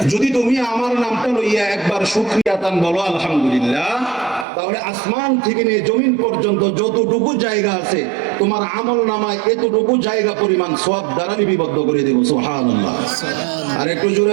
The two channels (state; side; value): drops out; left; at 4.5 s